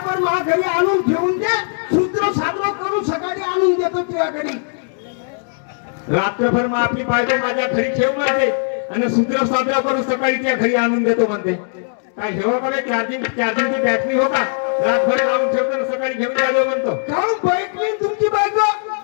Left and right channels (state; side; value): silent; right; 66 dB below the other